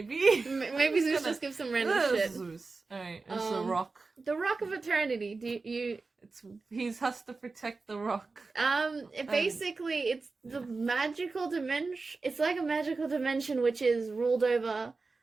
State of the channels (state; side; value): quieter; left; 4.0 dB